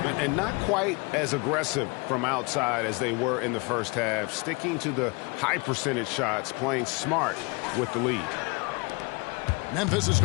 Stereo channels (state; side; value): quieter; right; 29.3 dB